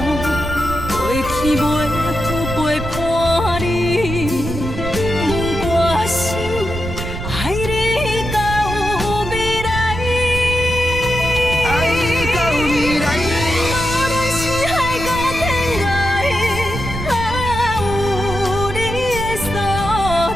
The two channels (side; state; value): right; noise; rumble, 7 dB below the sound